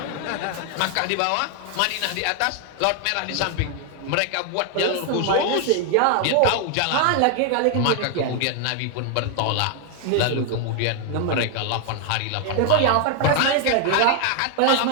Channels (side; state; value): both; different; correlation 0.00